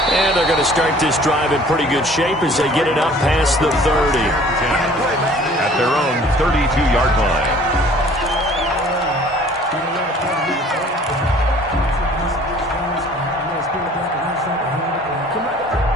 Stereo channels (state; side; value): normal; both; correlation 0.52